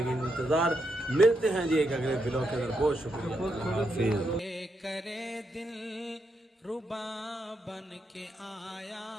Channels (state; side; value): normal; both; correlation 0.81